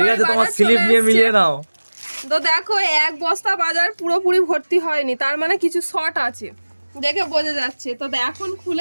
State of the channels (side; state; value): both; inverted; correlation -1.00